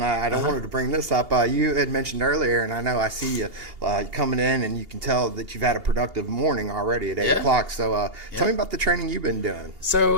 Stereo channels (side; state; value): left; late; 2.8 ms